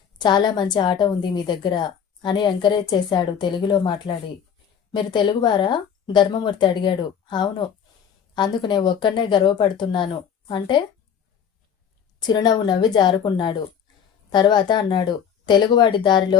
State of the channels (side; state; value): right; quieter; 7.9 dB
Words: చాలా మంచి ఆట ఉంది మీ దగ్గర అని ఎంకరేజ్ చేశాడు తెలుగులో మాట్లాడి. మీరు తెలుగువారా? ధర్మమూర్తి అడిగాడు. అవును, అందుకు నేను ఒక్కడనే గర్వపడుతున్నాను. అంటే? చిరునవ్వు నవ్వి జారుకున్నాడు. తర్వాత అన్నాడు, తెలుగువాడి